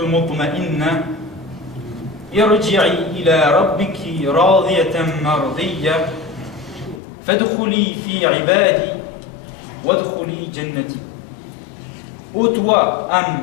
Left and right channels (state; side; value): drops out; right; at 7.0 s